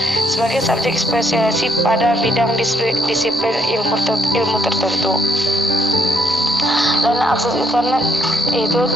sebagai subjek spesialisasi pada bidang disiplin ilmu tertentu. Dan akses internet itu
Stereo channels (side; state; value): both; normal; correlation 0.72